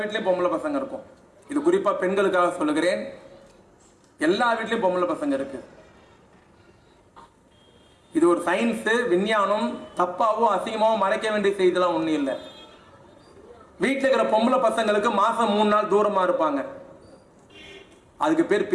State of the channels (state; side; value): identical; both; correlation 1.00